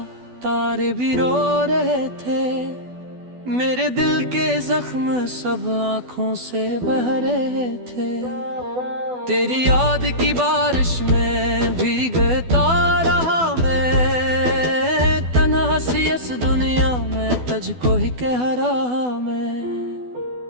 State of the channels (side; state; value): left; late; 12 ms